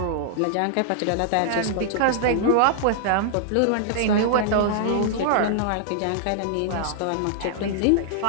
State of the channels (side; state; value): both; different; correlation -0.01